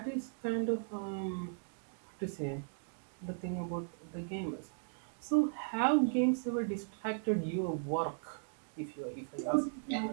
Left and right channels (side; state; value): left; silent; digital silence